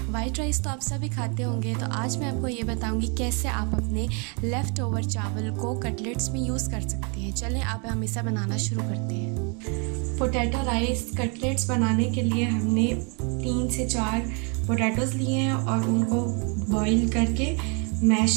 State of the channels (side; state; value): left; quieter; 35.1 dB